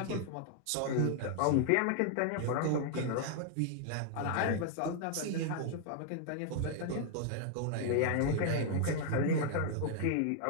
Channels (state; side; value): different; both; correlation -0.01